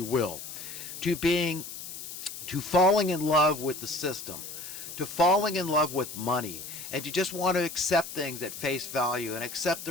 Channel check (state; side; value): noise; left; hiss, 10 dB below the sound